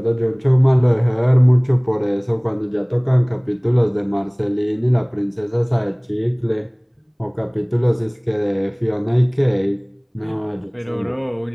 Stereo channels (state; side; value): identical; both; correlation 1.00